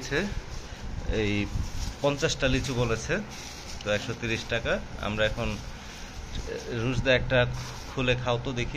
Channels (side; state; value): both; identical; correlation 1.00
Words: এই 50টা লিচু বলেছে, তো 130 টাকা। আমরা এখন রুশদা একটা খুলে খাও তো